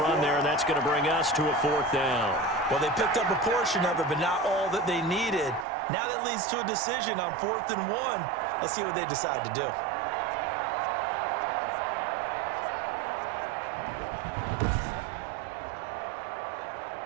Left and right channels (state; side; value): drops out; left; at 5.7 s